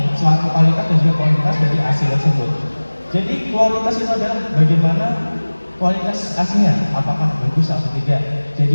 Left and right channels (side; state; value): both; inverted; correlation -1.00